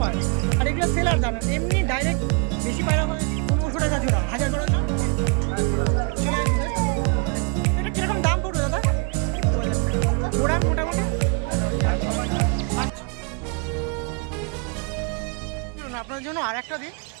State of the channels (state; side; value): quieter; left; 34.9 dB